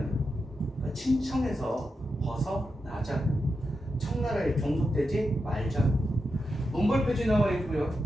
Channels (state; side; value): normal; both; correlation 0.88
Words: 그러니까 친청에서 벗어나자. 청나라에 종속되지 말자. 문벌폐지 나와 있고요.